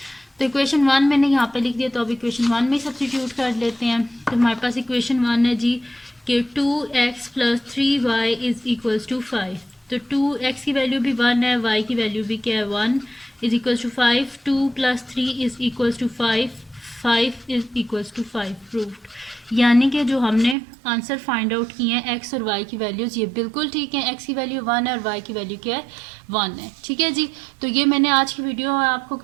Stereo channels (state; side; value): drops out; left; at 20.6 s